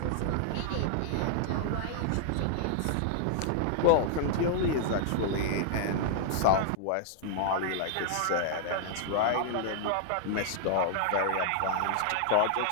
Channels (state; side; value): different; both; correlation -0.01